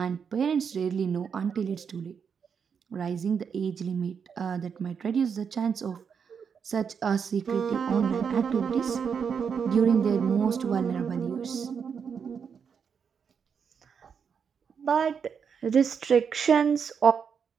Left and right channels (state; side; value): quieter; left; 6.7 dB